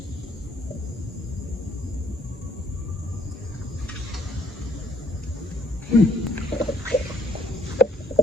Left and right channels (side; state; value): both; normal; correlation 0.64